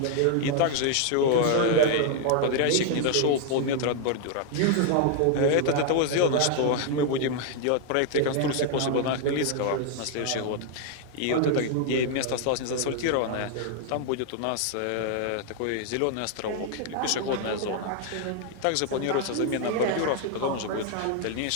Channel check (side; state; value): both; different; correlation 0.00